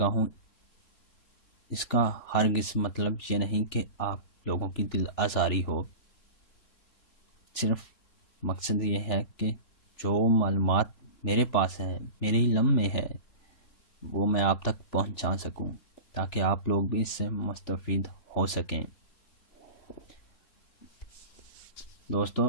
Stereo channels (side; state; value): right; late; 3.4 ms